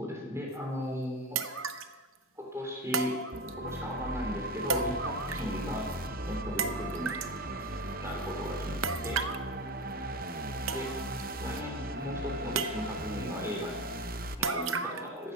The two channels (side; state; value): both; normal; correlation 0.23